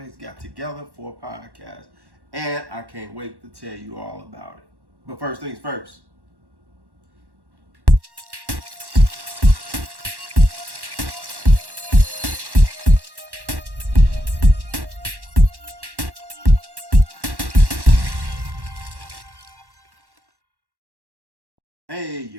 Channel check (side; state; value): left; late; 1.1 ms